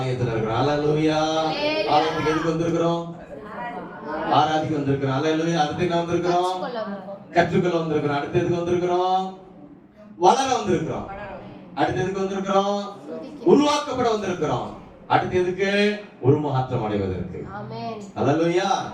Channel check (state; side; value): identical; both; correlation 1.00